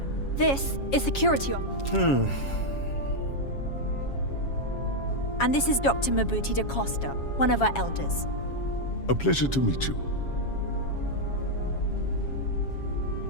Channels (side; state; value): right; late; 7.3 ms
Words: this is security. And this is Dr. Mabuti da Costa, one of our elders. A pleasure to meet you.